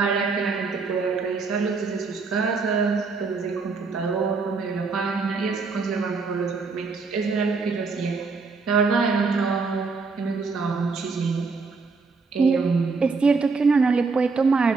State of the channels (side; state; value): left; quieter; 4.5 dB